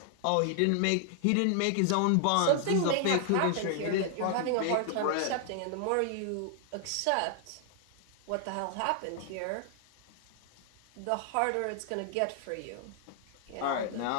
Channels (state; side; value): different; both; correlation 0.00